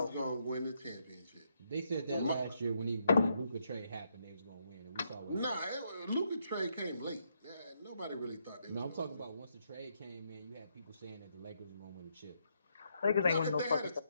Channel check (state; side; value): inverted; both; correlation -0.77